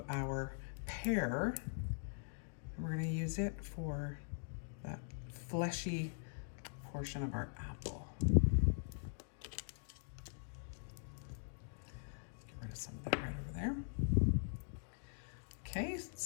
our pear. And we're going to use it for that fleshy portion of our apple. Some of that right over there. Okay,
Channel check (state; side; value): silent; right; digital silence